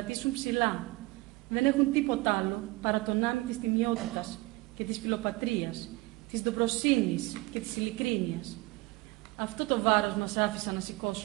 ψηλά. Δεν έχουν τίποτα άλλο παρά τον άμυ της τιμιότητας και της φιλοπατρίας, της ντοπροσύνης και της ειλικρίνειας. Αυτό το βάρος μας άφησαν να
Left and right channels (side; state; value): left; quieter; 21.6 dB